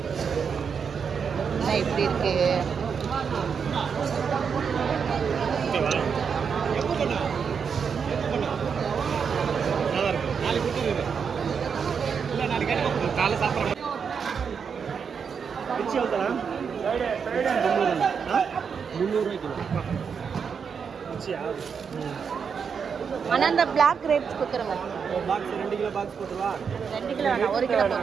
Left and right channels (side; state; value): left; quieter; 6.4 dB